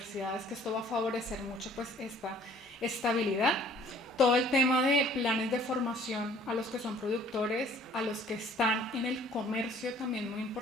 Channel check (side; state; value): both; normal; correlation 0.56